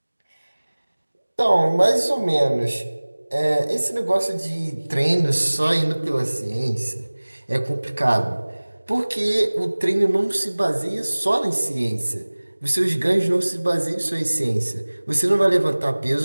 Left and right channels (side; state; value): both; inverted; correlation -1.00